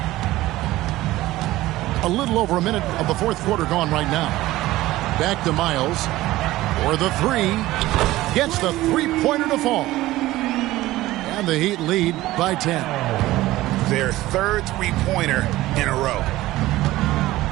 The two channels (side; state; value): left; quieter; 16.9 dB